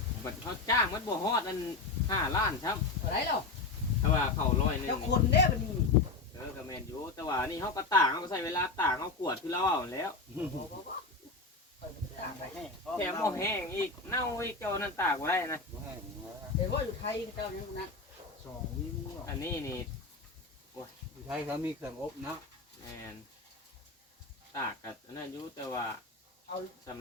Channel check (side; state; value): right; quieter; 3.7 dB